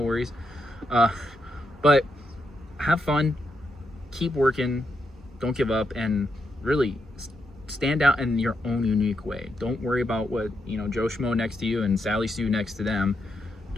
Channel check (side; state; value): both; normal; correlation 0.82